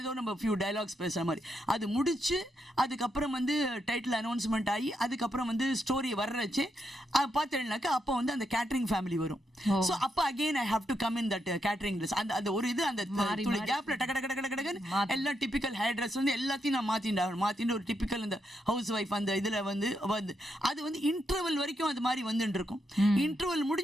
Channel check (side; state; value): both; normal; correlation 0.81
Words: ஏதோ நம்ம ஃபியூ டயலாக்ஸ் பேசுற மாதிரி அது முடிச்சு அதுக்கப்புறம் வந்து டைட்டில் அனௌன்ஸ்மெண்ட் ஆகி அதுக்கப்புறம் வந்து ஸ்டோரி வர்றச்சு பார்த்தேன்னாக்கா அப்போ வந்து அந்த கேட்டரிங் ஃபேமிலி வரும். ஸோ அப்போ again I have to come in that catering dress. அந்த ஒரு இது அந்த துளி கேப்ல டக்கு எல்லாம் டிபிக்கல் ஹேர் ட்ரெஸ் வந்து எல்லாத்தையும் நான் மாத்திட்டு ஒரு டிபிக்கல் இந்த ஹவுஸ் ஒய்ஃப் அந்த இதுல வந்து அது வந்து இன்டர்வல் வரைக்கும் அது மாதிரி வந்துட்டு இருக்கும். இன்டர்வல்